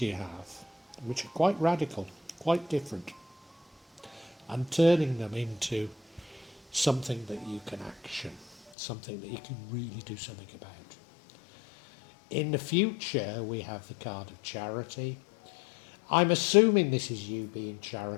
you have, which are quite radical, quite different, and turning them into something that you can action, something that you can really do something about. In the future, we have the card of charity. I'm assuming this is you being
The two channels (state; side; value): drops out; right; at 8.7 s